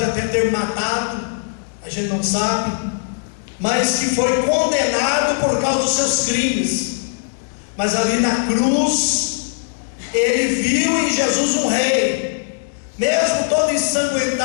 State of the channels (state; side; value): silent; right; 66 dB below the other